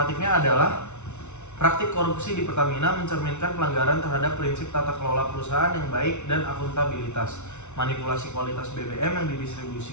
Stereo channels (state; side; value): late; right; 0.82 ms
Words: adalah praktik korupsi di Pertamina mencerminkan pelanggaran terhadap prinsip tata kelola perusahaan yang baik dan akuntabilitas. Manipulasi kualitas BBM yang